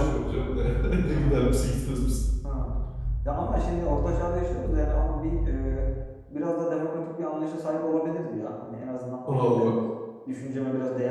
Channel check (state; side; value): identical; both; correlation 1.00